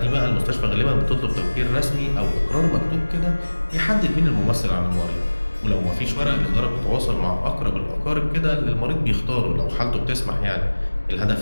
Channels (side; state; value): both; inverted; correlation -1.00